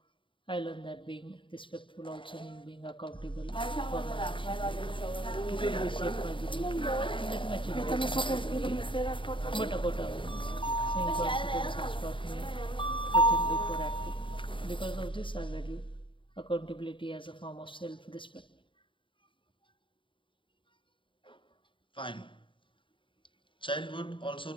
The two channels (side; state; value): right; late; 0.24 ms